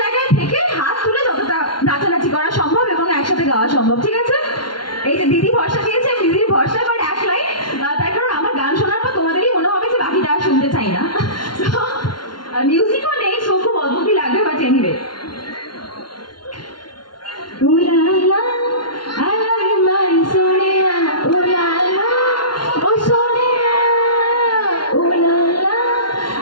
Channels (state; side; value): late; right; 0.71 ms